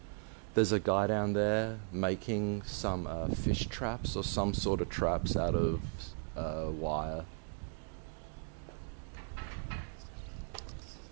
There's a guy down there making some fish traps or some sort of traps out of wire.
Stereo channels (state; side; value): silent; left; 53 dB below the other